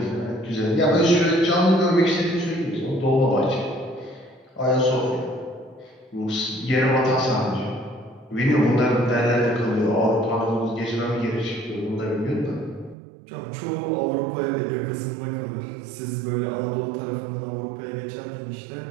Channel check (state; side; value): drops out; left; at 13.0 s